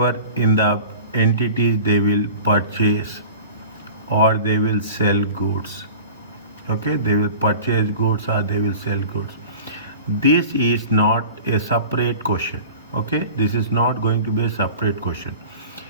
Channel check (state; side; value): inverted; both; correlation -0.39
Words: in the entities they will purchase or they will sell goods. Okay, they will purchase goods or they will sell goods. This is not a separate question. Okay, this is not going to be a separate question.